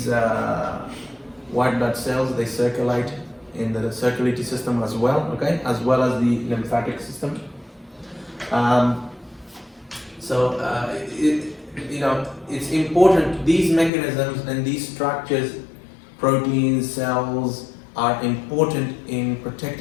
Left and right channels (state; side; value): drops out; right; at 13.9 s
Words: white blood cells, they circulate in the circulatory system as well. Okay, as well as the lymphatic system. It's important, these mechanisms and these structures, proteins, cells, are important in